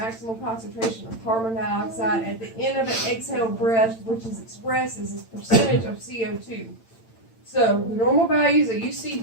concentration of carbon dioxide at the end of an exhaled breath, which is expressed as a percentage of CO2. So the normal values that you see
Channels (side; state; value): right; late; 8.9 ms